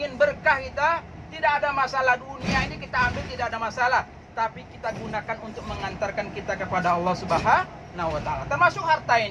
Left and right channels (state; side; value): identical; both; correlation 1.00